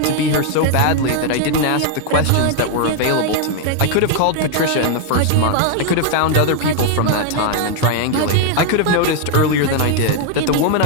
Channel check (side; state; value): both; different; correlation 0.00